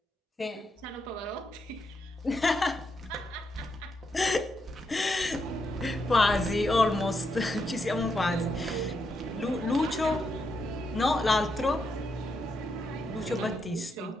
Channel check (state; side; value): normal; both; correlation 0.82